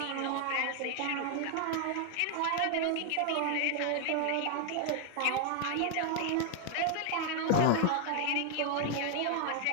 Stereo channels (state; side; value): different; both; correlation 0.00